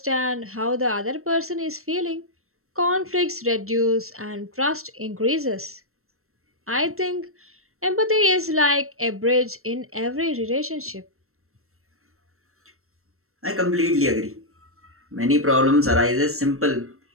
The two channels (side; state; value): left; late; 0.63 ms